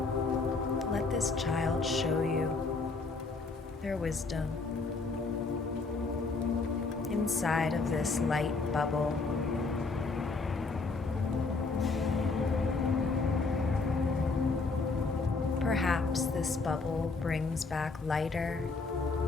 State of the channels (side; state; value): right; quieter; 4.0 dB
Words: Let this child show you their wisdom inside of this light bubble. Perhaps this bubble brings back lighter,